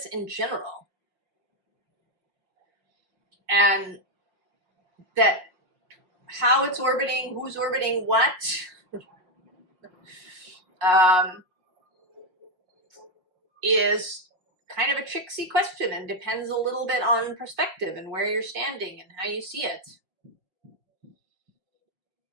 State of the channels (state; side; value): late; left; 5.5 ms